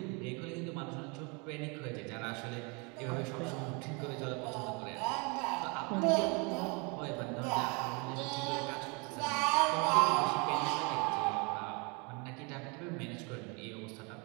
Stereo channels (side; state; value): left; quieter; 31.2 dB